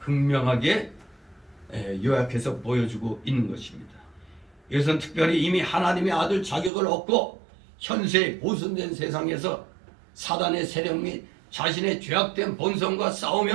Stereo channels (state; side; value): drops out; left; at 6.7 s